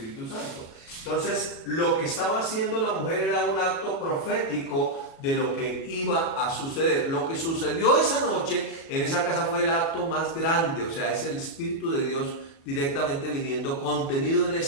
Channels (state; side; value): late; right; 36 ms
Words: Santo. Entonces lo que estaba haciendo la mujer era un acto profético de lo que iba a suceder. Lo que sucedió esa noche en esa casa fue el acto más grande, o sea, es el Espíritu de Dios directamente viniendo, contenido en